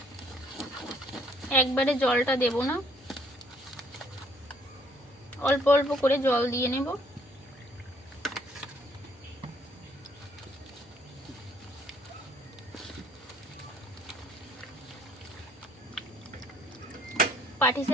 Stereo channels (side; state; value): both; normal; correlation 0.62